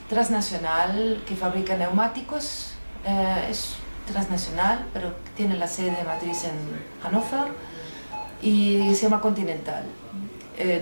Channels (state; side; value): inverted; both; correlation -1.00